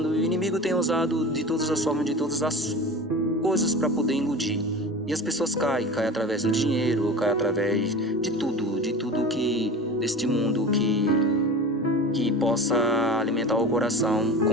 E o inimigo tem usado de todas as formas, de todas as coisas para poder iludir. E as pessoas caem através do dinheiro, caem através de tudo que deste mundo que possa alimentar o coração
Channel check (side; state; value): both; normal; correlation 0.34